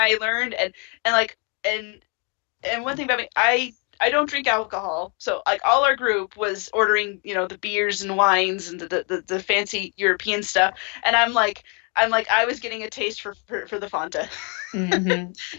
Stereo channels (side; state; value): right; quieter; 35.5 dB